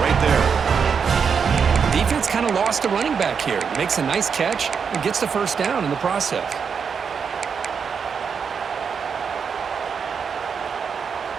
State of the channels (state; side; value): quieter; left; 6.4 dB